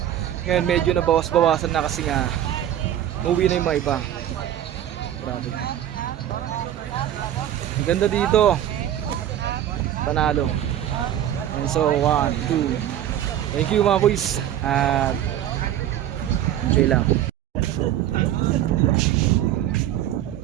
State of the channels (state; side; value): quieter; left; 11.5 dB